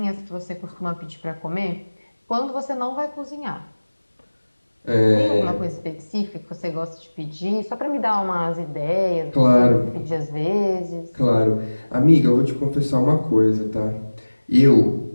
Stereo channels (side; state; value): both; inverted; correlation -1.00